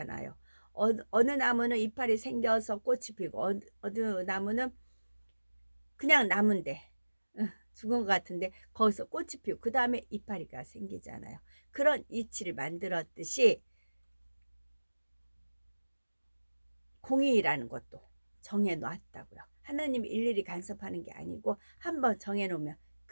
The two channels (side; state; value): both; inverted; correlation -1.00